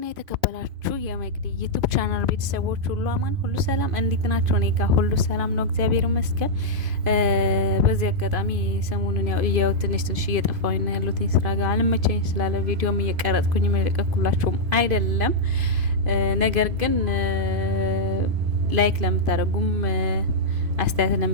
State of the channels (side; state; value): left; late; 2.5 ms